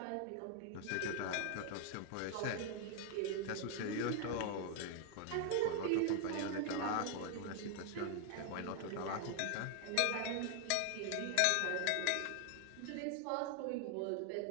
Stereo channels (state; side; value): different; both; correlation 0.00